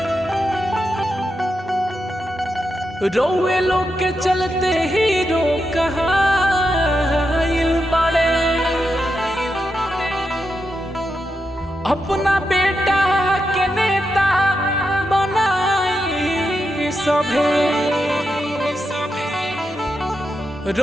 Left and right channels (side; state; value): both; normal; correlation 0.86